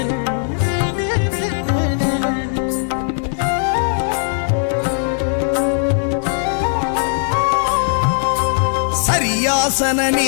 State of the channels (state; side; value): silent; right; 67 dB below the other